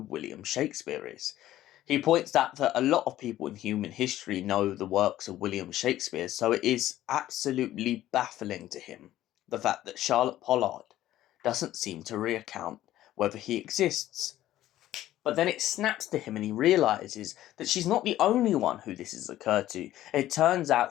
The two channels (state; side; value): quieter; right; 13.8 dB